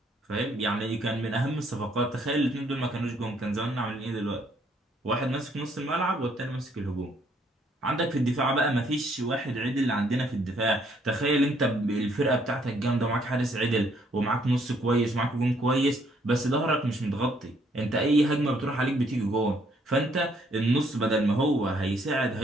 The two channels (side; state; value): both; normal; correlation 0.67